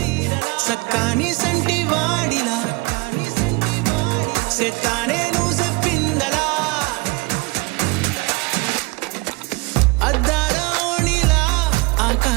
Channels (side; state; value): left; quieter; 26.9 dB